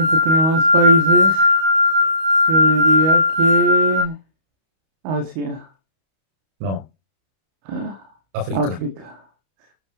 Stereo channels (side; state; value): left; late; 31 ms